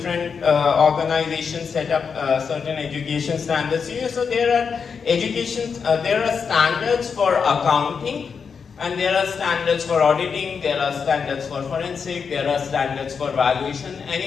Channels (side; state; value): right; quieter; 6.0 dB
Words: organizations set up certain education standards. So there are there are standards for accounting, and there are standards for auditing, there are standards for forensic, there are standards for valuation.